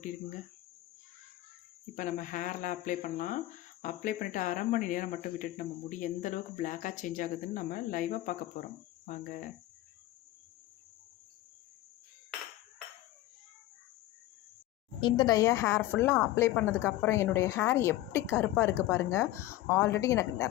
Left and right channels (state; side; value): quieter; right; 15.5 dB